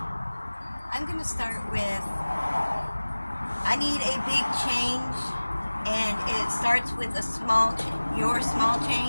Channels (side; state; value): both; inverted; correlation -1.00